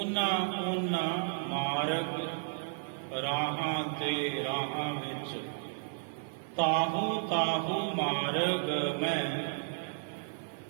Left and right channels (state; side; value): silent; left; 56 dB below the other